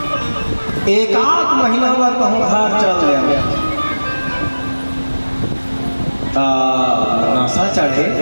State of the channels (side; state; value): both; inverted; correlation -1.00